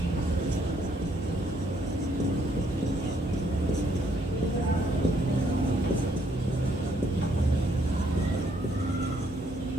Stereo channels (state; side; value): normal; both; correlation 0.69